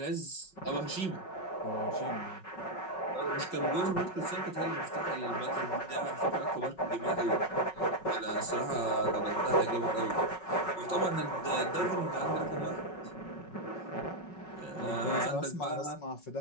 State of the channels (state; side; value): late; right; 5.4 ms